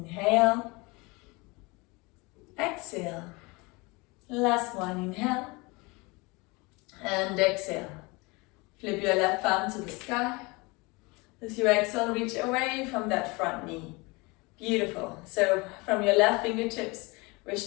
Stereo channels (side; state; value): right; quieter; 25.9 dB